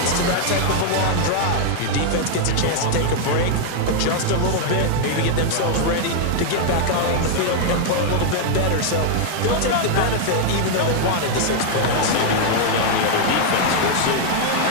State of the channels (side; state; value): both; different; correlation 0.00